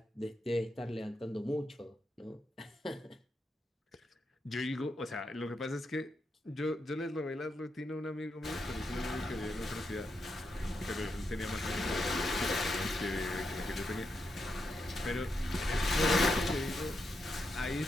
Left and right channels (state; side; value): normal; both; correlation 0.83